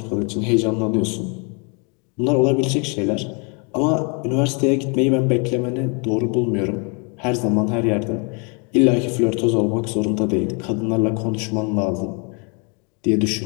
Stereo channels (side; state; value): right; quieter; 35.4 dB